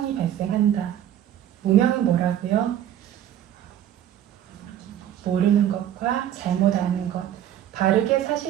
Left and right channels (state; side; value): quieter; left; 11.1 dB